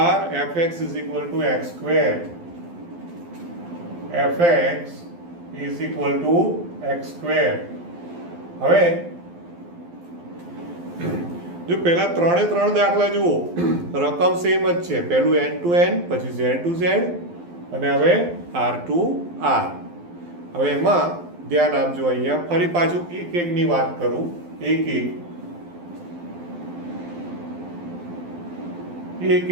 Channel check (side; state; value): left; late; 12 ms